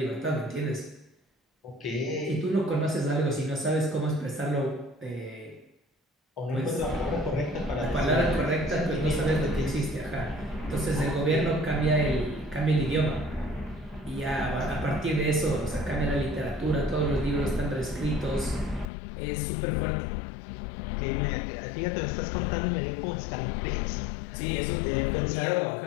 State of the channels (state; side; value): drops out; right; at 18.9 s